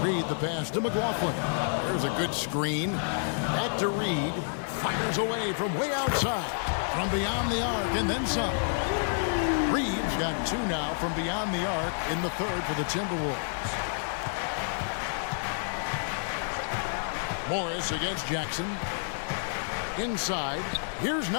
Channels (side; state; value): right; silent; digital silence